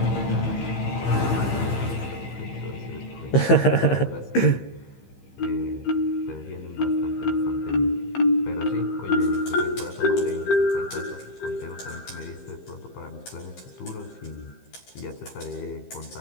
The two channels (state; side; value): late; right; 15 ms